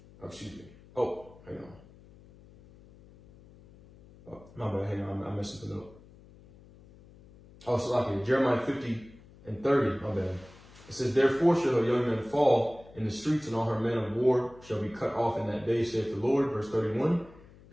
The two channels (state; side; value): noise; left; hum, 23 dB below the sound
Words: Oh, excuse me. Oh, hang on. Oh, my bad, hang on, I messed something up. Oh, so okay, Jeremiah 50 and 30, my bad. It says, therefore shall her young men fall in the streets, and all her men of war shall be cut off in that day, saith the Lord. Verse 31,